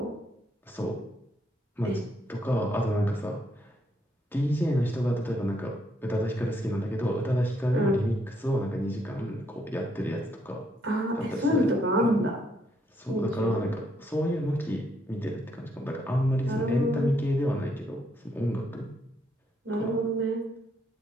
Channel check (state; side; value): normal; both; correlation 0.73